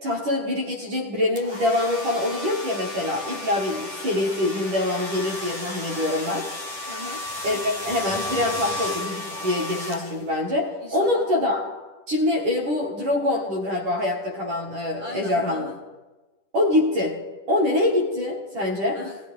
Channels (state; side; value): late; left; 10 ms